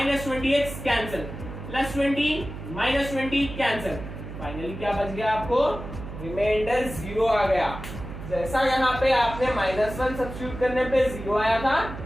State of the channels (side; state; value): right; noise; hum, 10 dB below the sound